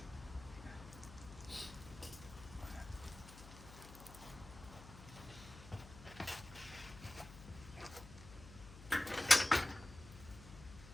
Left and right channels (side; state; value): left; noise; hum, 15 dB below the sound